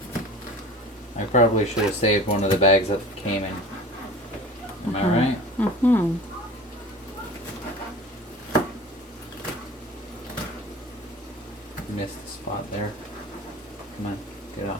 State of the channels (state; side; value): normal; both; correlation 0.39